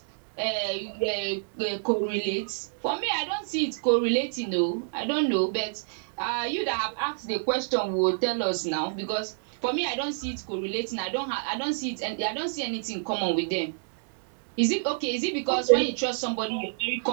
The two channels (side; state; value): left; silent; digital silence